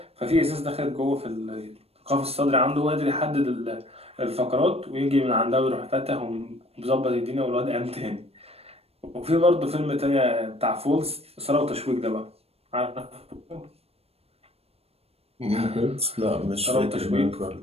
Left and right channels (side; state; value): left; late; 0.29 ms